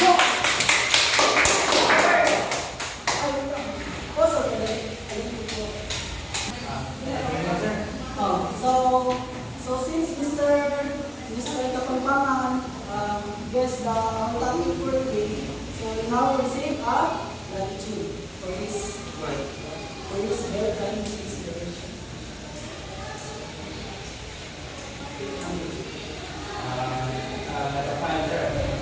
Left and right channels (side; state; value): both; identical; correlation 1.00